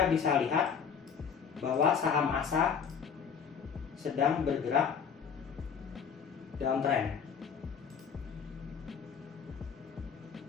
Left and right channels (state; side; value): quieter; right; 6.8 dB